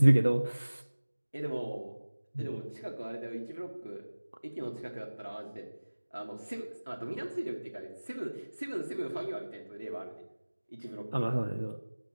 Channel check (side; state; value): both; inverted; correlation -1.00